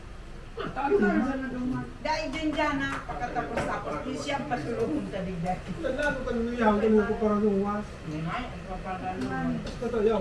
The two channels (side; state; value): both; identical; correlation 1.00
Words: Dahil din dyan na pagkatapos tapos, di siya pasulungan taligdag. Naglago ka nung iyaw, ganun ko parang luwas. Basta iyaw,